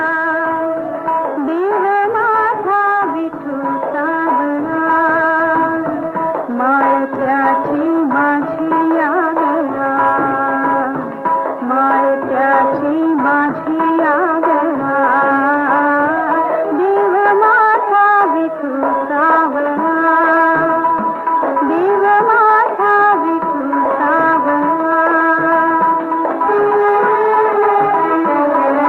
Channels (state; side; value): identical; both; correlation 1.00